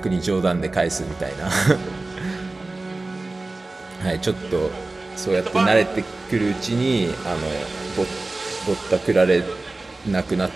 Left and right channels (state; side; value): quieter; left; 3.2 dB